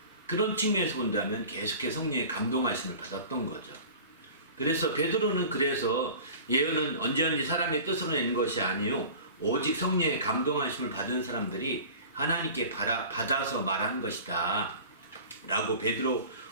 그런 측면에서 본다면 계속해서 성령의 감동하심을 받았던 거죠. 그래서 베드로는 그래서 예언은 언제든지 사람의 뜻으로 낸 것이 아니요 오직 성령의 감동하심을 받은 사람들이 하나님께 받아서 말한 것이다 라고 베드로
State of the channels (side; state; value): both; inverted; correlation -0.40